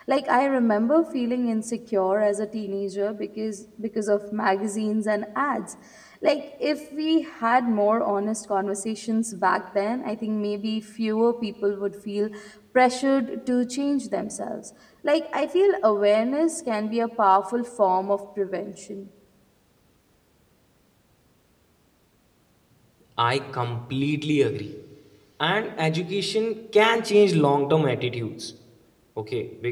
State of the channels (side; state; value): both; identical; correlation 1.00